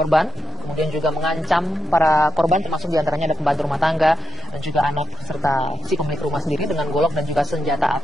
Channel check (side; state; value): both; normal; correlation 0.83